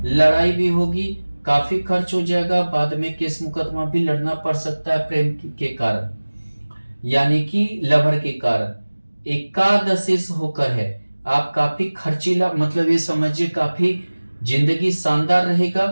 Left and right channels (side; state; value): both; inverted; correlation -1.00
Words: लड़ाई भी होगी, काफी खर्च हो जाएगा, बाद में केस मुकदमा भी लड़ना पड़ सकता है प्रेम के कारण, यानी कि लवर के कारण। एकादशेश होकर है, आप काफी खर्चीला, मतलब ये समझिए काफी जिंदगी शानदार रहेगा,